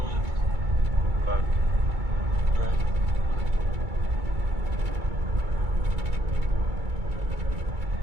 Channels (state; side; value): late; left; 2.3 ms